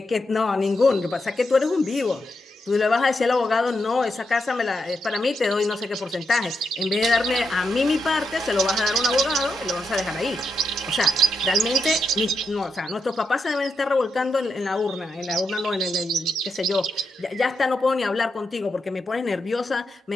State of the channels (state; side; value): normal; both; correlation 0.84